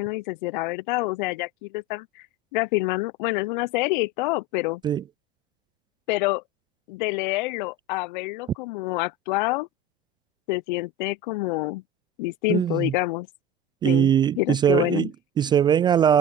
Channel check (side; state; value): both; normal; correlation 0.29